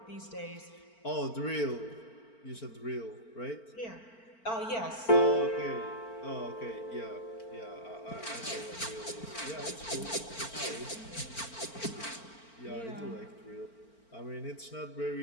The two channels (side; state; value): right; late; 4.4 ms